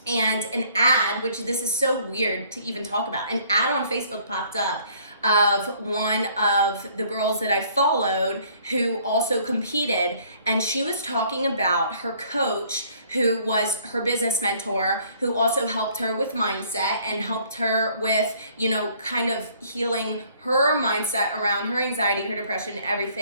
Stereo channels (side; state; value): both; inverted; correlation -0.60